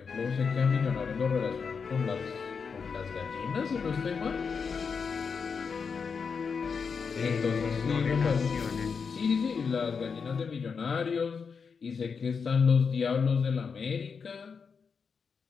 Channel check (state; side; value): quieter; right; 5.7 dB